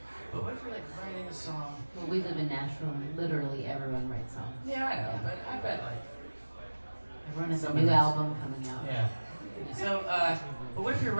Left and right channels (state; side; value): inverted; both; correlation -1.00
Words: But what if you're like writing a song? Well, we live in Nashville and literally everyone writes songs. Yeah, I know, yeah. But I bet like everyone has a new album coming out. Yeah. So, but what if you're